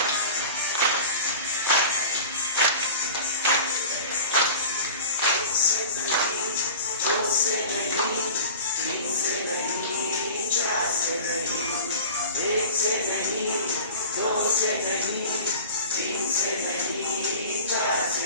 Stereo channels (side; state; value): both; inverted; correlation -0.37